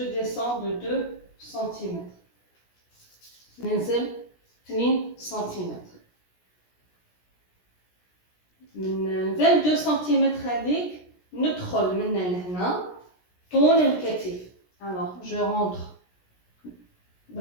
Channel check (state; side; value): late; right; 17 ms